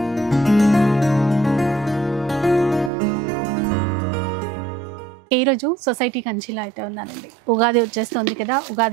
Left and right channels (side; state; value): left; drops out; at 2.9 s